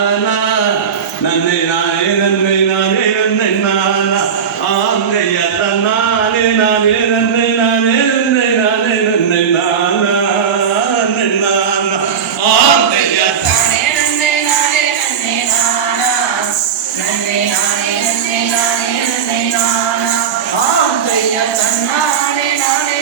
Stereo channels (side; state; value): left; quieter; 7.2 dB